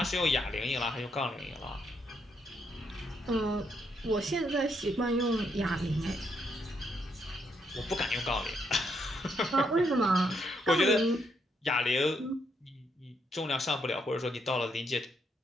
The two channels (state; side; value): normal; both; correlation 0.76